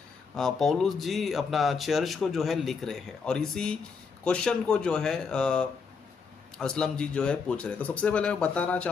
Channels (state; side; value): quieter; right; 5.3 dB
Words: पौलुस जी अपना चर्च को जो है लिख रहे हैं, और इसी क्वेश्चन को जो है असलम जी जो है पूछ रहे हैं। तो सबसे पहले मैं बताना